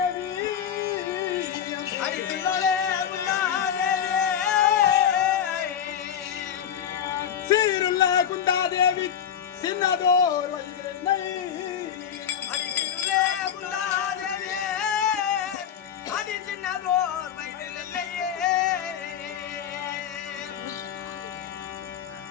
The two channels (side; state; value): right; quieter; 8.9 dB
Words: சீருள்ள குந்தாதேவி சின்னதோர் வயதிலே,